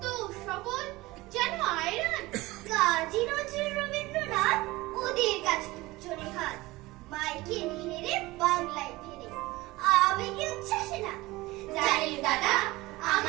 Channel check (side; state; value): left; quieter; 20.1 dB